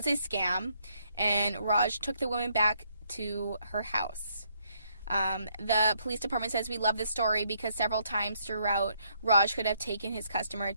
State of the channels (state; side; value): inverted; both; correlation -0.72